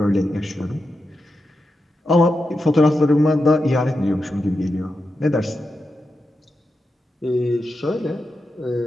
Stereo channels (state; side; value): normal; both; correlation 0.88